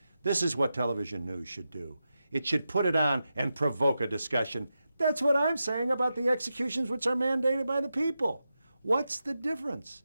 This is what television news should do. It should put it on and provoke a discussion. That's what I'm saying about the executions which are mandated by the people. What's the difference?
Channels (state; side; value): inverted; both; correlation -0.89